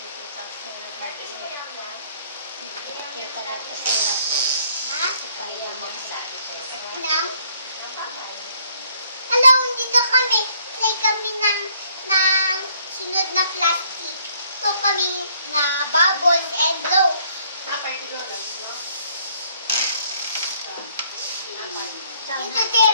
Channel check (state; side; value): inverted; both; correlation -0.65